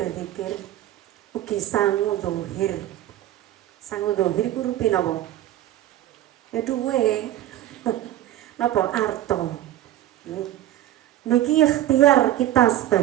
ugi sangu zahir. Sangu zahir ku rupi napa? Ya duwe. Napa arto? Niki ikhtiar kita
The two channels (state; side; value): quieter; left; 13.2 dB